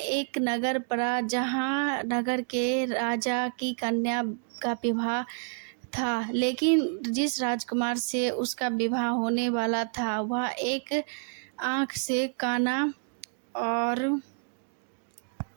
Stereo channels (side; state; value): left; silent; 56 dB below the other